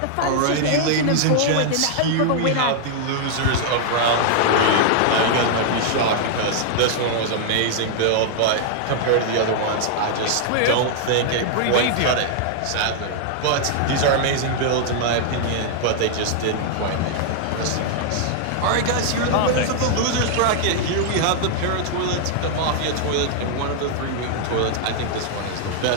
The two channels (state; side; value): different; both; correlation -0.01